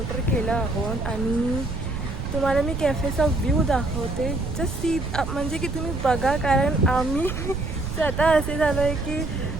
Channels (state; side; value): noise; right; rumble, 5 dB below the sound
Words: केलं आहोत आणि तुम्हाला मी कॅफेचा व्ह्यू दाखवते. जस्ट सी म्हणजे की तुम्ही बघा कारण आम्ही स्वतः असे झालो आहे की